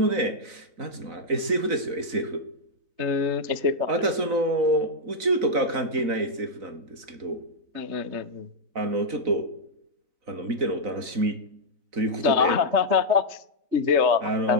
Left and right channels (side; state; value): left; late; 4.0 ms